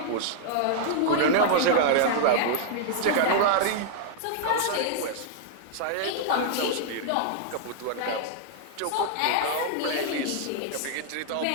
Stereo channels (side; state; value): both; different; correlation -0.01